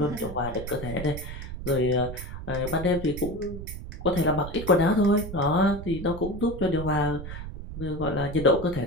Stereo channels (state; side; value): noise; right; rumble, 9 dB below the sound